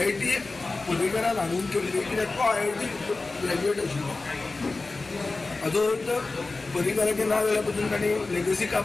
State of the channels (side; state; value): right; quieter; 3.5 dB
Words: पर्रीकरान हाडून केल्ली कित्याक तो IIT ग्रॅज्युएट आशिल्लो हाजो अर्थ पर्रीकराचें ना जाल्या पसून ताणें लेगसी